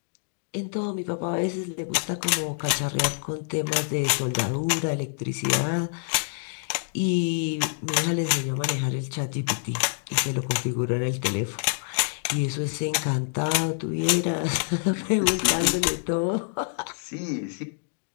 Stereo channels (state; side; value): silent; right; digital silence